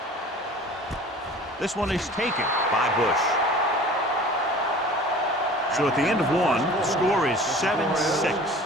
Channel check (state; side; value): normal; both; correlation 0.43